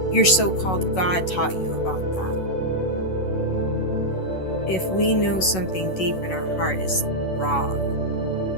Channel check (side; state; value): right; late; 11 ms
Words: your so-called God taught you about that? If we know something deep in our heart is wrong